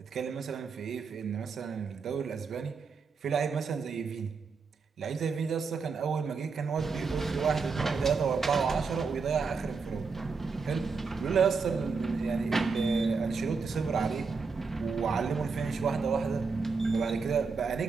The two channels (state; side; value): quieter; left; 4.9 dB